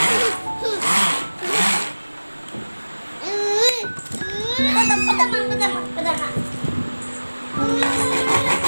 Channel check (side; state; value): both; inverted; correlation -1.00